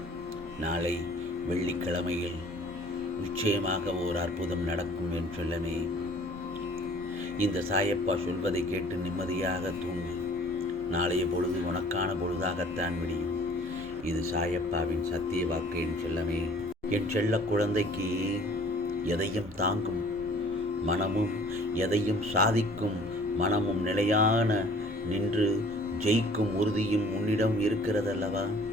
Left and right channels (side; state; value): both; normal; correlation 0.52